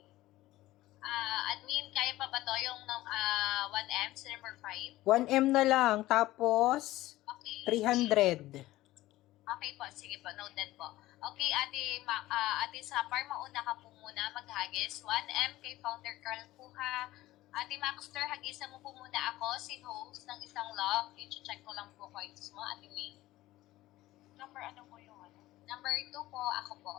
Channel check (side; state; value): right; quieter; 16.7 dB